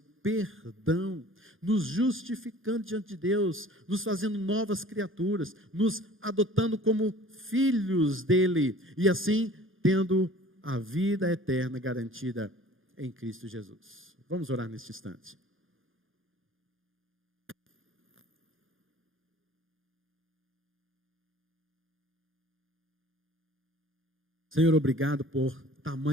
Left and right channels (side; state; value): left; late; 0.59 ms